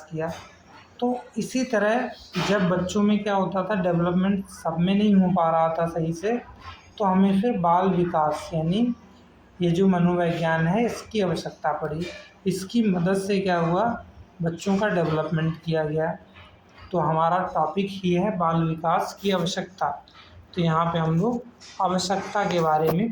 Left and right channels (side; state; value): both; identical; correlation 1.00